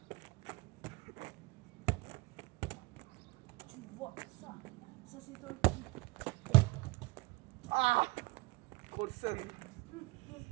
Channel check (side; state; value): left; quieter; 23.8 dB